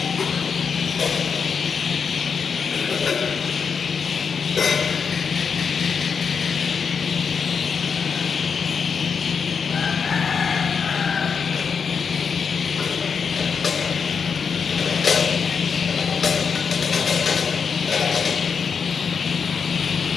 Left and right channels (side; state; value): right; quieter; 6.1 dB